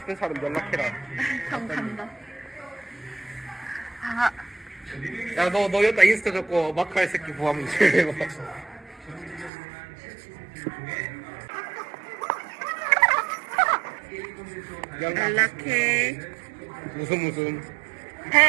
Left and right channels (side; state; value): left; drops out; at 9.5 s